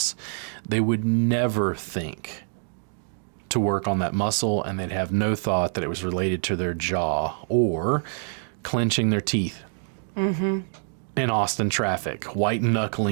They would never think to work on that muscle, and they'd have no thought that it was related to their jaw or clenching their teeth in Austin traffic, white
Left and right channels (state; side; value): silent; left; digital silence